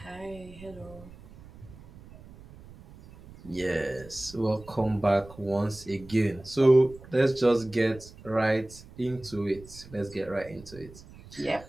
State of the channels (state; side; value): noise; right; rumble, 19 dB below the sound